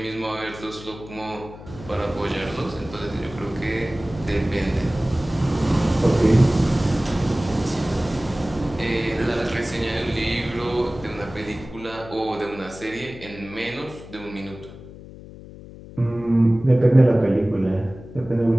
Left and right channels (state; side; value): noise; left; hum, 16 dB below the sound